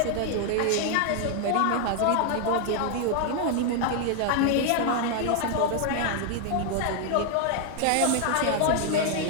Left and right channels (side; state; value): both; different; correlation 0.00